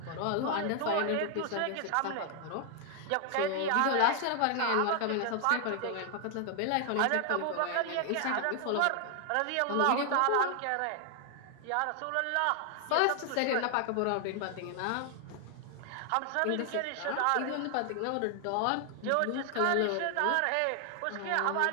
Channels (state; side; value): different; both; correlation 0.00